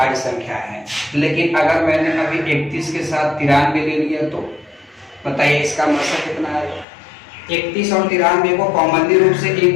संख्या है। लेकिन अगर मैंने अभी 31 के साथ 93 ले लिया, तो बताइए इसका मौसा कितना आएगा? 31 और 93 को कॉमनली रूप से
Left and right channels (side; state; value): right; drops out; at 6.9 s